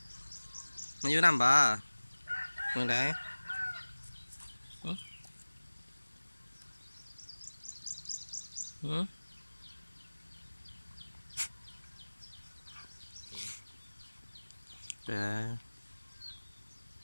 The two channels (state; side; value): inverted; both; correlation -1.00